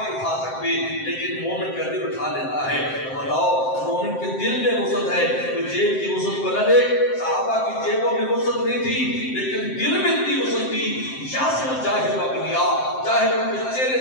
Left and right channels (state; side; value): late; right; 7.7 ms